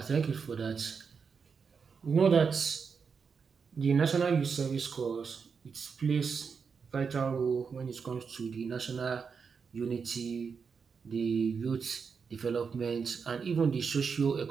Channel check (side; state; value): left; quieter; 5.8 dB